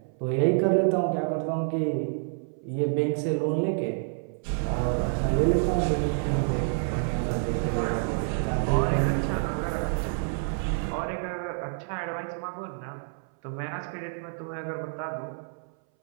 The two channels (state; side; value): silent; left; 59 dB below the other